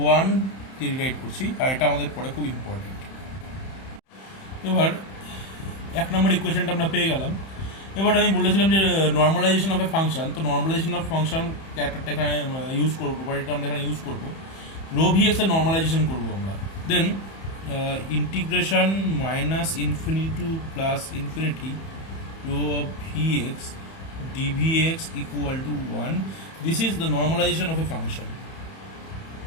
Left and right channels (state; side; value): late; right; 31 ms